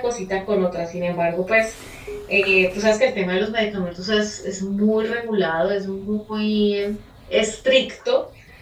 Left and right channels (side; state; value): both; identical; correlation 1.00